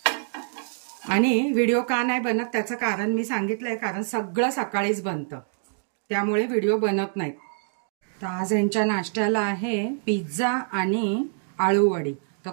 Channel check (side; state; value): left; silent; 61 dB below the other